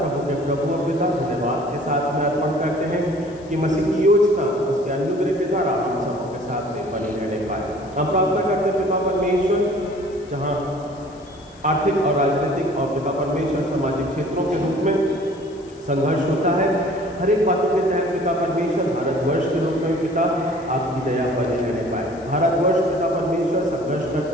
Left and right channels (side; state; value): left; noise; hiss, 27 dB below the sound